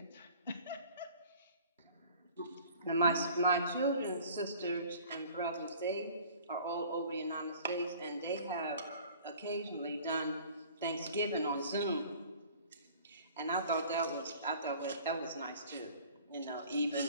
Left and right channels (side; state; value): both; inverted; correlation -0.49